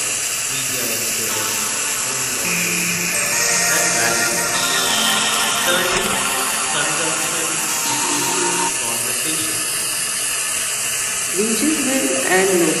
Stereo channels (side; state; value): both; identical; correlation 1.00